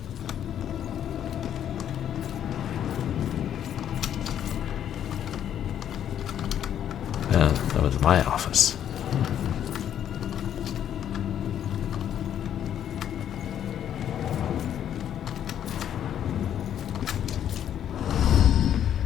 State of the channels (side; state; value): right; quieter; 10.0 dB